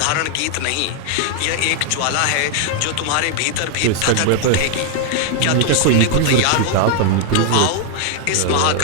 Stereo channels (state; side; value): different; both; correlation 0.00